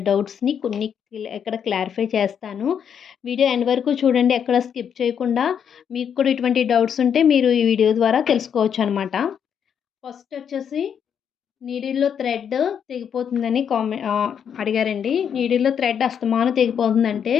డౌట్స్‌ని కొన్ని ఇక్కడ క్లారిఫై చేస్తాను. వీడియో ఎండ్ వరకు చూడండి. ఎక్కడ స్కిప్ చేయకుండా. మీకు కూడా ఇటువంటి డౌట్స్ ఉంటే మీరు ఈ వీడియో ద్వారా తెలుసుకోవచ్చనమాట. ఫస్ట్ వచ్చేసి నీడిల్‌లో థ్రెడ్ తెగిపోతుందని అడిగారండి. నీడిల్‌లో థ్రెడ్ అస్తమానం తెగిపోతుందంటే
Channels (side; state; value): right; quieter; 8.0 dB